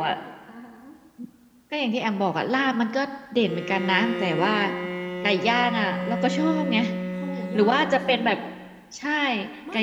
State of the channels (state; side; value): identical; both; correlation 1.00